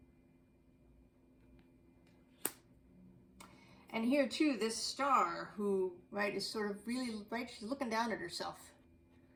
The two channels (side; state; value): both; identical; correlation 1.00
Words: And here too, this star who, right, is sort of really, right, she's looking down at herself.